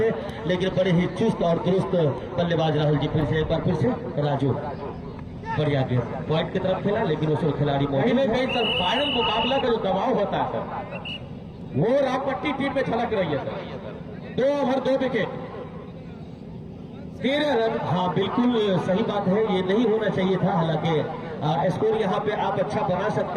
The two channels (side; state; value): both; identical; correlation 1.00